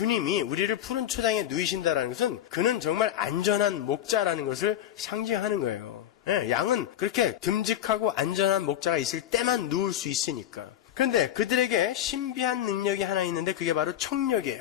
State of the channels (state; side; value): quieter; right; 11.3 dB